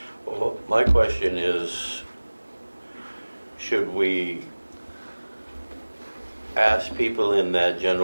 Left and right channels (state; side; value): inverted; both; correlation -1.00